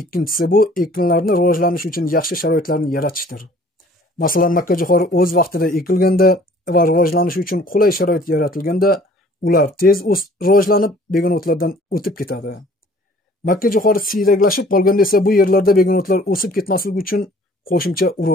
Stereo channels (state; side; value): normal; both; correlation 0.53